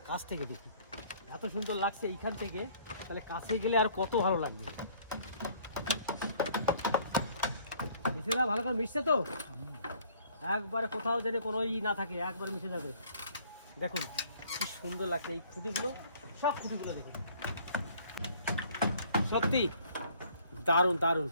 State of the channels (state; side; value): inverted; both; correlation -0.58